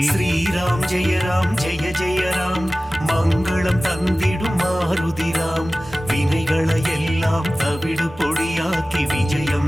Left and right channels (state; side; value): normal; both; correlation 0.97